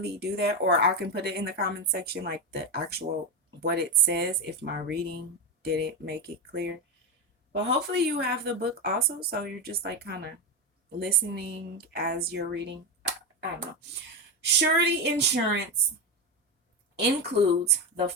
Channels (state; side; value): normal; both; correlation 0.12